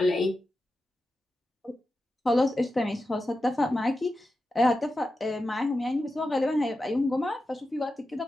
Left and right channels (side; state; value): both; normal; correlation 0.91